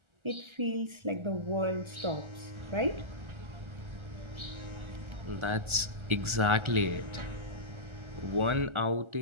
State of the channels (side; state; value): left; late; 1.4 ms